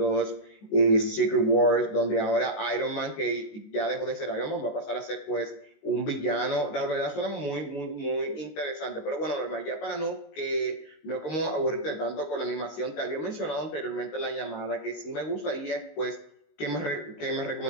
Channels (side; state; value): right; late; 19 ms